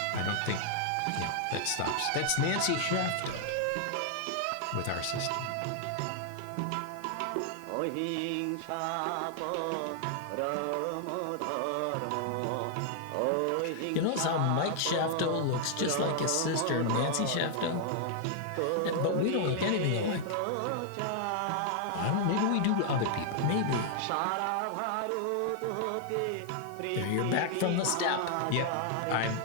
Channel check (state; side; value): different; both; correlation 0.00